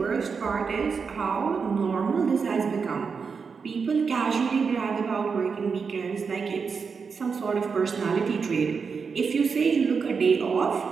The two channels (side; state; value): left; quieter; 5.5 dB